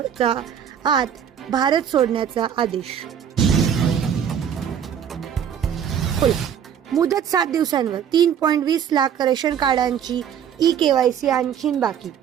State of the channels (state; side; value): quieter; left; 8.7 dB